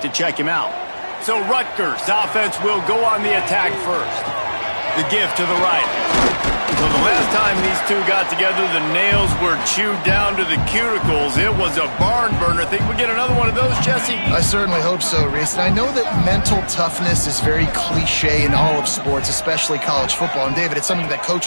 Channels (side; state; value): both; inverted; correlation -1.00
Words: to check him out. So Rutgers offense will go on the attack first. The give to the right. So the last time these two got together, the nails were chewed down to the cuticles. It was a barn burner. Think we get another one of those, Jesse? I certainly hope so, Reese. And I know that mental toughness is very cliche in all of sports, especially college football. And, David, it's something that